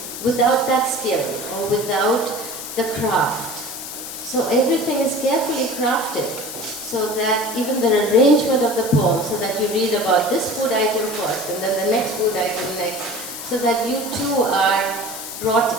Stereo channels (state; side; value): noise; left; hiss, 9 dB below the sound